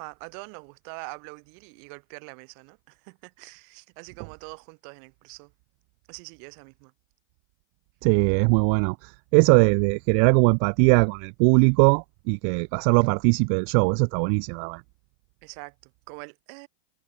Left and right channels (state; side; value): silent; left; 61 dB below the other